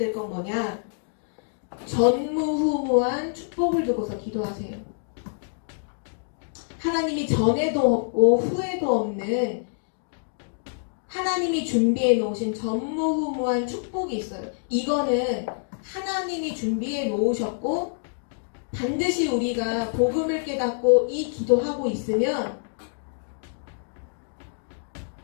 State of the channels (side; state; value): right; silent; digital silence